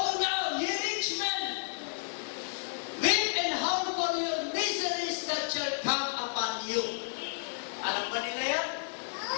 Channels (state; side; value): silent; right; 57 dB below the other